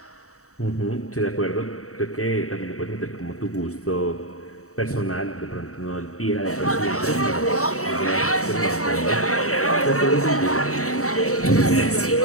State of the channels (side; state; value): right; late; 0.64 ms